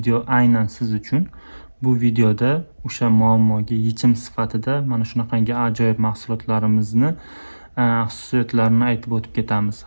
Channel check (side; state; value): both; inverted; correlation -1.00